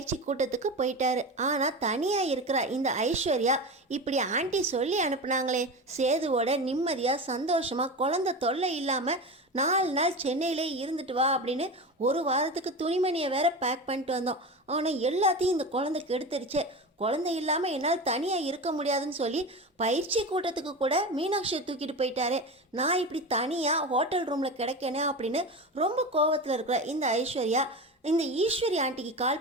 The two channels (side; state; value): both; normal; correlation 0.26